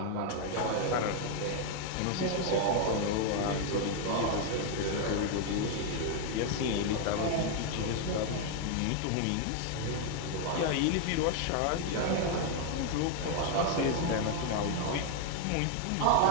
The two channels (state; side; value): different; both; correlation 0.00